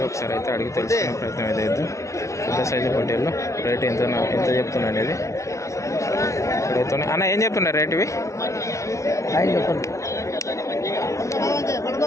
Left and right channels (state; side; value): late; right; 0.14 ms